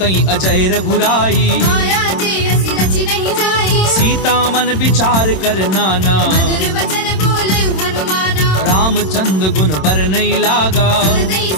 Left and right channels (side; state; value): right; late; 26 ms